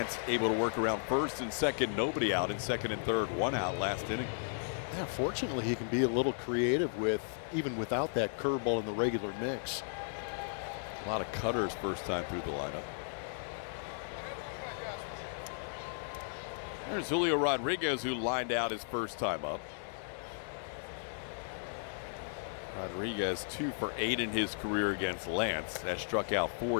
able to work around first and second, nobody out in second and third, one out last inning. Yeah, fortunately, he can be a little creative with even without that curveball in the regular mix. A lot of cutters first time through the lineup. There's Julio Rodriguez, who lined out his first time up. Rodriguez 2 for 8 in his career against Lance. Has struck out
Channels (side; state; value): right; silent; digital silence